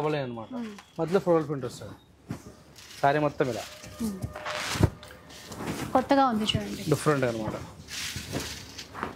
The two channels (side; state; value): both; identical; correlation 1.00